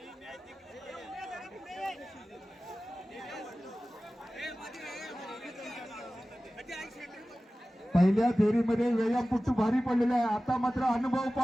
पहिल्या फेरीमध्ये व्यायामपट्टू भारी पडलेला आहे. आता मात्र अनुभव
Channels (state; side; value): normal; both; correlation 0.96